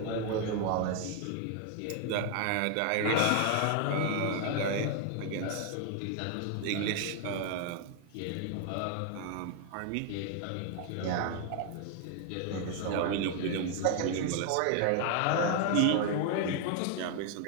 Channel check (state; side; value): different; both; correlation 0.00